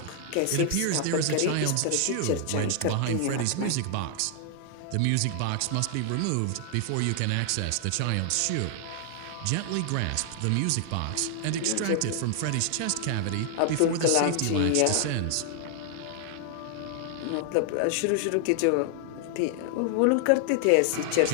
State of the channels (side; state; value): both; different; correlation 0.00